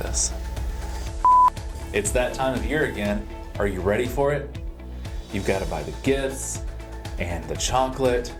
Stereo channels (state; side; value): identical; both; correlation 1.00